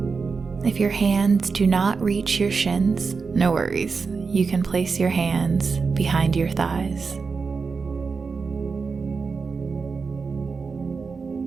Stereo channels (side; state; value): left; quieter; 4.9 dB